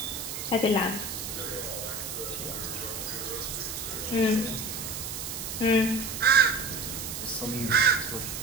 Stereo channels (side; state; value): right; noise; hiss, 6 dB below the sound